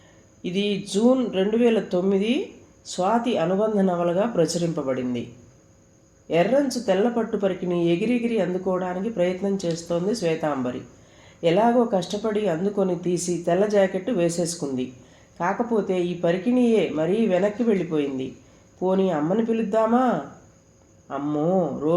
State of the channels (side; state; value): both; identical; correlation 1.00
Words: ఇది జూన్ 2009 స్వాతి అనుబంధ నవలగా ప్రచురింపబడింది. ఎర్రంచు తెల్లపట్టు పరికిని ఎగిరెగిరి అందుకోవడానికి ప్రయత్నం చేస్తోంది శ్వేతాంబరి. ఎలాగో కష్టపడి అందుకొని తీసి తెల్ల జాకెట్టు వేసేసుకుంది. కాకపోతే ఈ పరికిణియే మరీ వెనక్కి వెళ్ళిపోయింది. పోనీ అమ్మని పిలుద్దామా? అమ్మో,